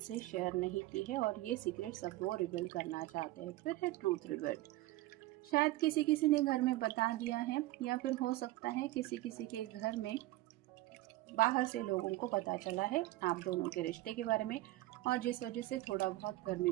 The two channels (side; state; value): left; quieter; 17.7 dB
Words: शेयर नहीं की है, और ये सीक्रेट्स अब वो रिवील करना चाहते हैं। फिर है ट्रूथ रिवील्ड। शायद किसी किसी ने घर में बता दिया है, या फिर हो सकता है किसी किसी के घर में बाहर से लोगों को पता चला है आप दोनों के रिश्ते के बारे में, और जिस वजह से थोड़ा बहुत घर में